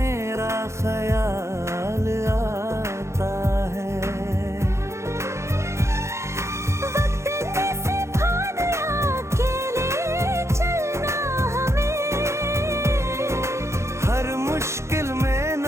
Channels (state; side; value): late; left; 0.14 ms